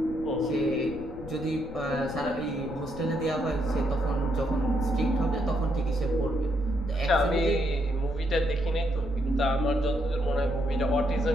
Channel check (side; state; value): left; noise; rumble, 15 dB below the sound